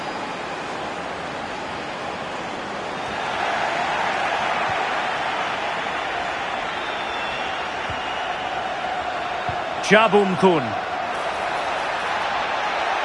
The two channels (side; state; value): both; identical; correlation 1.00